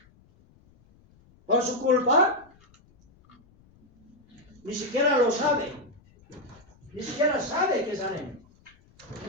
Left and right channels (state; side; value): noise; left; rumble, 30 dB below the sound